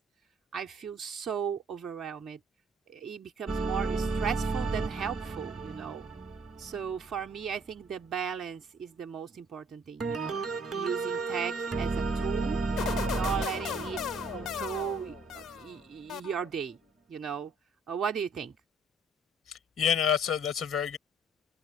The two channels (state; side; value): normal; both; correlation 0.60